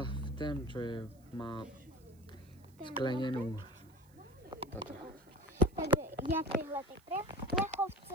ten, čo je, má sklenenú. Takže ja tyhle ty plechovce,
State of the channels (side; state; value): right; noise; hiss, 30 dB below the sound